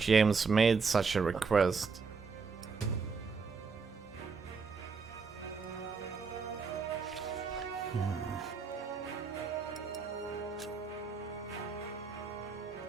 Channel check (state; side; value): quieter; left; 5.1 dB